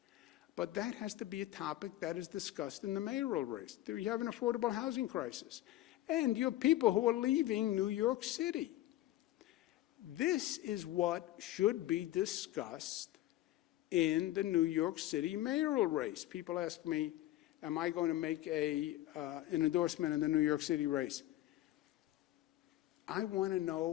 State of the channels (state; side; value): quieter; right; 14.8 dB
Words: But that has to be a topic that is discussed in the mayoral race. You have an affordable housing crisis. And you have people who are leaving New York City. This is what should be discussed in the New York City mayoral race. People ask me, am I going to make an endorsement in the New York City race? I want to